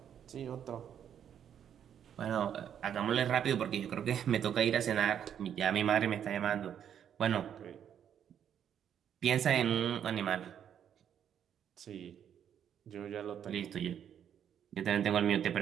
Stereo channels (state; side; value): quieter; left; 9.0 dB